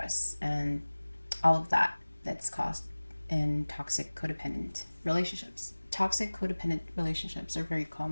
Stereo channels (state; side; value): inverted; both; correlation -1.00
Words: and all of that that's caused in toxic codependent relationships. Toxic codependent relationships are very